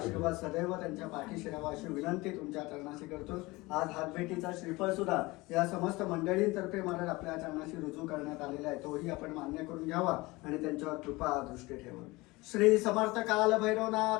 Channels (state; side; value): quieter; right; 22.1 dB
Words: सदैव त्यांच्या पाठीशी राहावा अशी विनंती तुमच्या चरणाशी करतो. आज हातभेटीचा श्रीफळ सुद्धा या समस्त मंडळींतर्फे महाराज आपल्या चरणाशी रुजू करण्यात आलेला आहे. तोही आपण मान्य करून घ्यावा आणि त्यांच्यावर कृपा दृष्टी ठेवा. श्री समर्थ काल